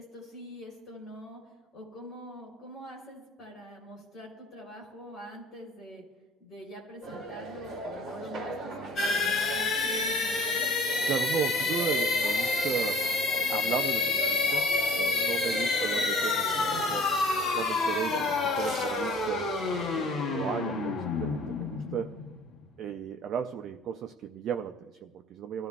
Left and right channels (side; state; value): both; normal; correlation 0.49